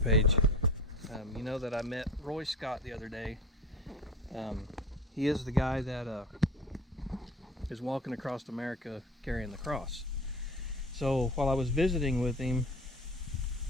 page, you know that I met Roy Scott the other day. He is the guy that is walking across America carrying the cross. So while I was visiting with him,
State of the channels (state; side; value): normal; both; correlation 0.36